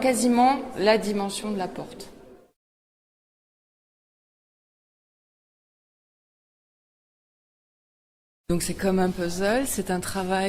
la dimension de la porte. Donc c'est comme un puzzle, c'est un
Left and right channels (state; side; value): identical; both; correlation 1.00